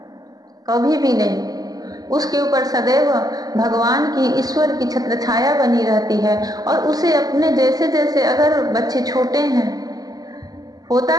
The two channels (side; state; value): left; late; 0.18 ms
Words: कभी भी नहीं। उसके ऊपर सदैव भगवान की, ईश्वर की छत्र छाया बनी रहती है। और उसे अपने जैसे जैसे, अगर बच्चे छोटे हैं, होता